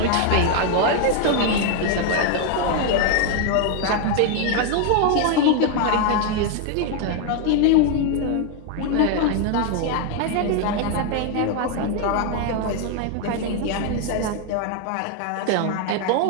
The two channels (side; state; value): both; different; correlation 0.01